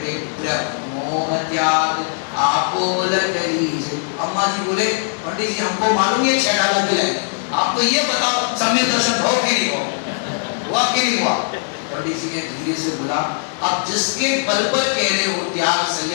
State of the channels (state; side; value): silent; right; digital silence